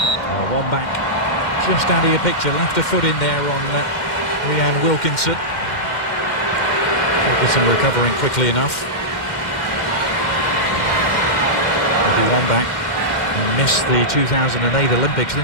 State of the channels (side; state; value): right; late; 2.1 ms